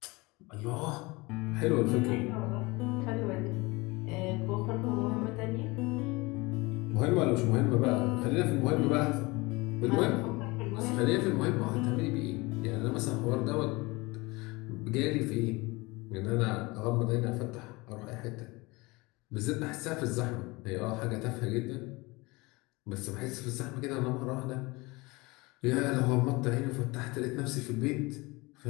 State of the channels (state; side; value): quieter; right; 23.9 dB